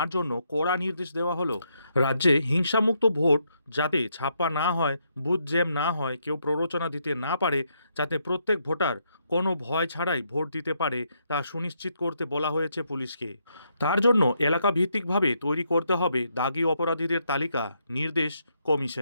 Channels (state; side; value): inverted; both; correlation -0.76